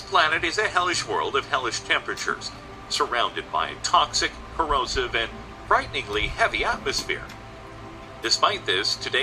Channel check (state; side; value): identical; both; correlation 1.00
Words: planet is a hellish world of hellish temperatures, surrounded by a toxic, corrosive, and frighteningly heavy atmosphere. Despite this,